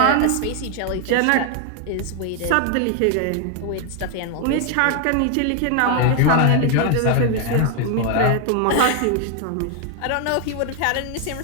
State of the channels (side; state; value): both; different; correlation 0.00